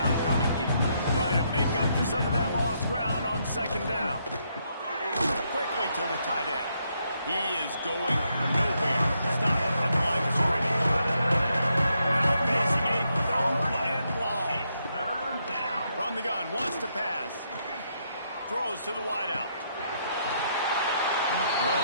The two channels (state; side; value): inverted; both; correlation -0.77